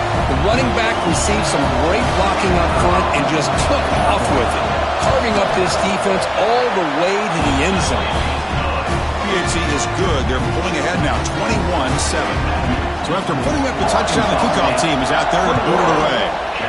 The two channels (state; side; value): identical; both; correlation 1.00